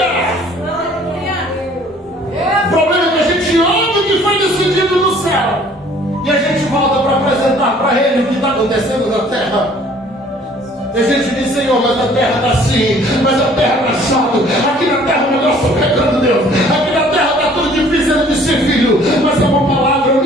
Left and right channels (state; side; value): normal; both; correlation 0.55